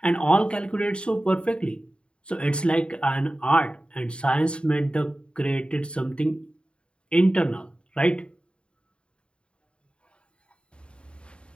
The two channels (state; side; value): late; right; 0.054 ms